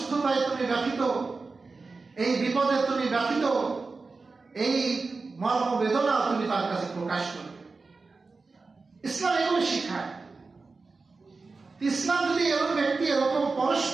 তুমি ব্যথিত, এই বিপদে তুমি ব্যথিত, এই মর্ম বেদনা তুমি তার কাছে প্রকাশ করবে। ইসলাম এগুলো শিখায়। ইসলাম যদি এরকম ব্যক্তি এরকম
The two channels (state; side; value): quieter; left; 4.0 dB